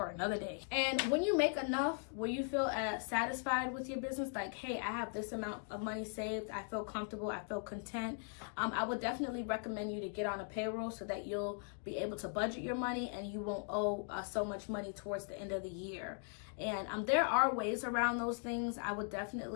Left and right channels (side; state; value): right; silent; 52 dB below the other